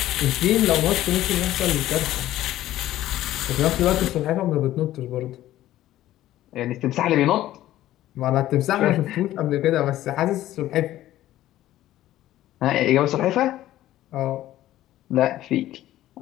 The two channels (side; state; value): right; quieter; 14.2 dB